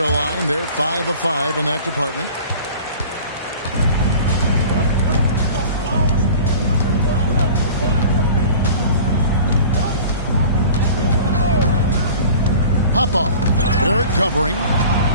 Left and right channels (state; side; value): inverted; both; correlation -0.42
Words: line. They're 5 of 5 in that department. Pop-off. Barrett covering.